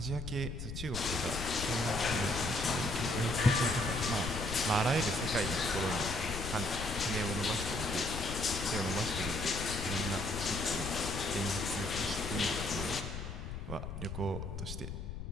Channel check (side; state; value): left; noise; rumble, 7 dB below the sound